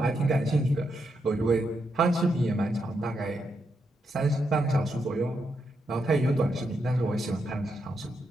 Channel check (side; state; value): both; normal; correlation 0.82